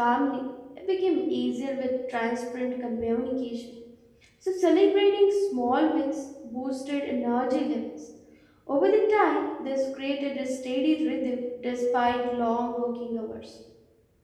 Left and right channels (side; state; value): both; identical; correlation 1.00